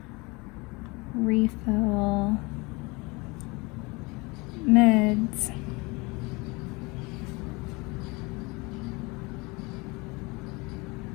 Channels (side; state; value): right; quieter; 26.0 dB